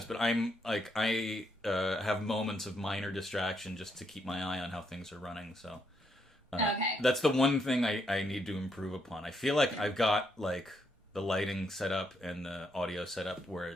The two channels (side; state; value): both; normal; correlation 0.76